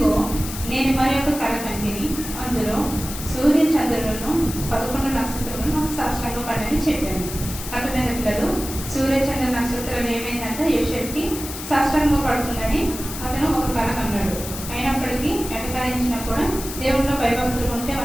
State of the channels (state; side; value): noise; left; hiss, 9 dB below the sound